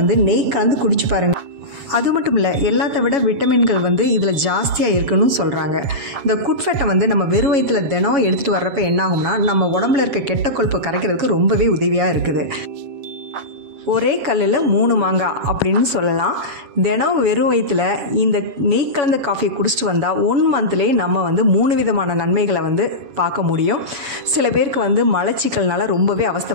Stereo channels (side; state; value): left; late; 7.1 ms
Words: நெய் கலந்து குடிச்சு பாருங்கள். அது மட்டும் இல்லை, எல்லாத்த விட விட்டமின்கள் இதில் ஜாஸ்தியாக இருக்குன்னு சொல்கிறாங்க. இந்த குட் ஃபேட்டை நம்ம வெறும் வயிற்றில் தினம் எடுத்துகிட்டு வர்றப்ப என்ன ஆகும்னா, நம்ம உடம்புல இருக்க கெட்ட கொழுப்பை கரைக்கிறதுக்கு ரொம்பவே உதவியாக இருக்குது. ஒரே கல்லில் 3 மாங்காய் அப்படின்னு சொல்லலாம். தினம் வெறும் வயிற்றில் இந்த நெய் கலந்த காஃபியை குடிச்சிட்டு வந்தால் 1 மந்த்லேயே நம்ம 3 விதமான நன்மைகளை பார்க்க முடியும். சில பேருக்கு மலச்சிக்கல்னால ரொம்பவே